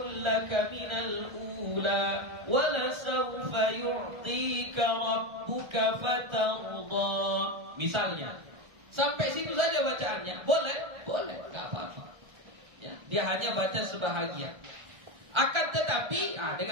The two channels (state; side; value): late; left; 1.3 ms